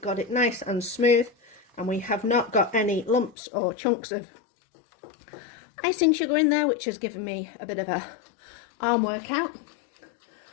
it nice and smooth, and we have not got any lumps or chunks of icing sugar in there, which has given me a bit of a arm workout.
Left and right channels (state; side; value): drops out; right; at 3.4 s